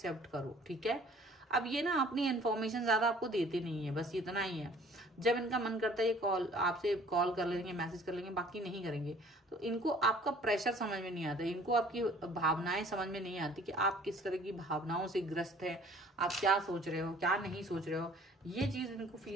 करो। ठीक है, अब ये ना अपनी इन्फॉर्मेशन ज्यादा आपको देते नहीं है, बस इतना ही है। जब इनका मन करता है ये आपसे कॉल कर लेंगे, मैसेज कर लेंगे, बाकी नहीं करेंगे। तो इनको आपका प्रेशर समझ में नहीं आता, इनको आपकी भावनाएं समझ में नहीं आती कि आप किस तरह की भावनाओं से ग्रस्त है, आप क्या सोच रहे हो, क्या नहीं सोच रहे हो, ये चीज इनको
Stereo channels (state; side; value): normal; both; correlation 0.53